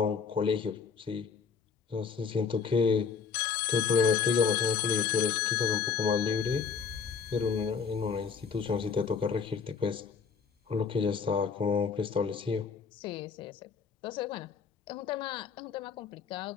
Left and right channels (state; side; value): quieter; right; 5.9 dB